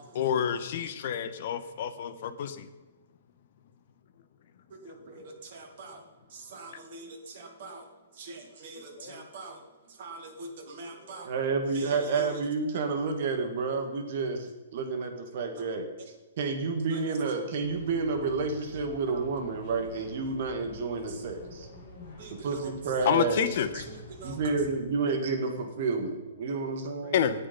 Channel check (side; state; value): both; inverted; correlation -0.40